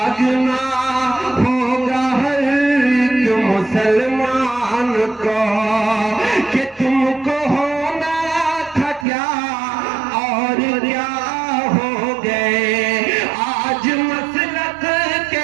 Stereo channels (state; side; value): drops out; left; at 9.1 s